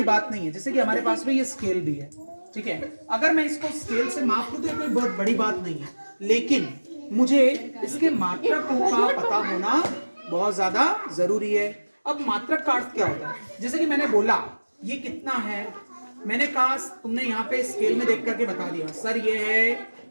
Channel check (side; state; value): both; inverted; correlation -1.00